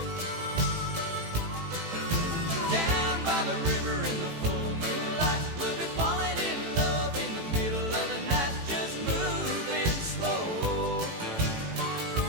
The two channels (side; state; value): left; late; 18 ms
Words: Down by the river in the full moonlight, we'll be falling in love in the middle of the night, just moving slow.